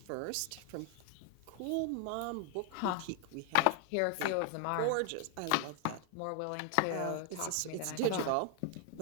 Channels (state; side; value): different; both; correlation 0.00